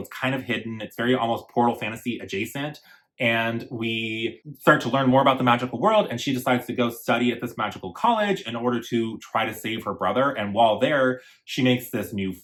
is kind of hidden. It's very almost Portal Fantasy adjacent. And we start to learn more about the magical world, and she decides to go study at this magical college in order to try to save her brother. And while there, she makes this new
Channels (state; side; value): identical; both; correlation 1.00